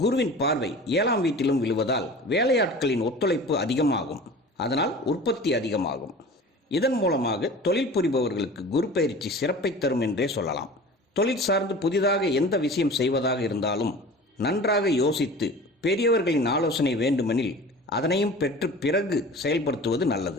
குருவின் பார்வை 7ஆம் வீட்டிலும் விழுவதால் வேலையாட்களின் ஒத்துழைப்பு அதிகமாகும். அதனால் உற்பத்தி அதிகமாகும். இதன் மூலமாக தொழில் புரிபவர்களுக்கு குரு பயிற்சி சிறப்பை தரும் என்றே சொல்லலாம். தொழில் சார்ந்து புதிதாக எந்த விஷயம் செய்வதாக இருந்தாலும் நன்றாக யோசித்து பெரியவர்களின் ஆலோசனை வேண்டுமெனில் அதனையும் பெற்று பிறகு செயல்படுத்துவது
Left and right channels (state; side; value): normal; both; correlation 0.39